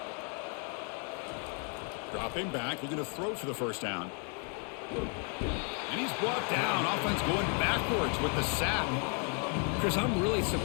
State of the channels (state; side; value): quieter; right; 39.6 dB